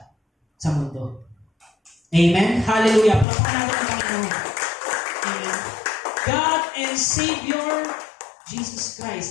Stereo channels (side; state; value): right; drops out; at 3.2 s